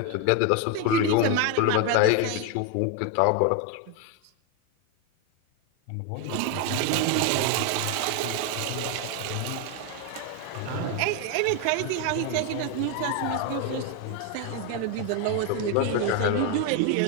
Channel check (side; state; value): both; different; correlation 0.01